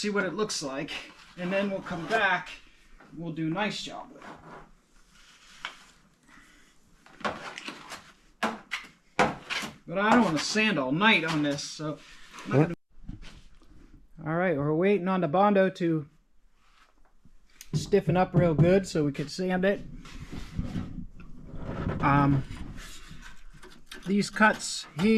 what it looks like, and then we'll come back. We'll do a nice job with it. But I don't want to sand all night on this, so. All right, we're waiting on the Bondo to stiffen up real good so we can sand it. These cuts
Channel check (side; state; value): both; identical; correlation 1.00